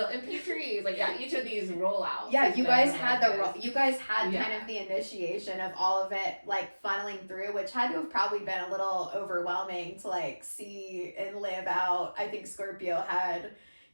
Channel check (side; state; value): both; inverted; correlation -1.00